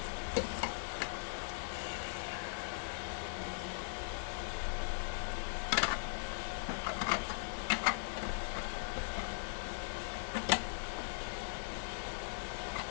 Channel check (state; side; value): silent; right; digital silence